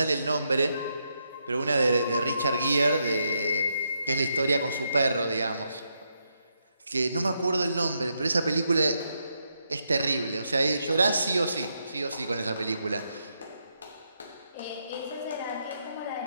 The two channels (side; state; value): both; inverted; correlation -0.80